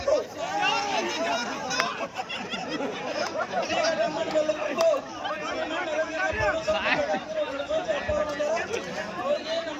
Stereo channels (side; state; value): both; identical; correlation 1.00